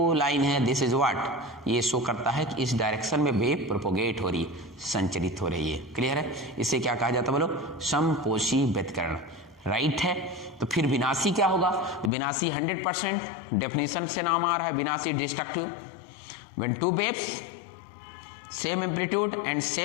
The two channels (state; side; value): drops out; right; at 12.1 s